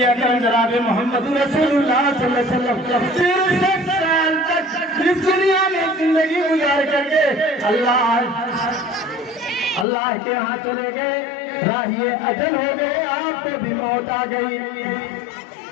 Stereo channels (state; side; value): drops out; right; at 9.9 s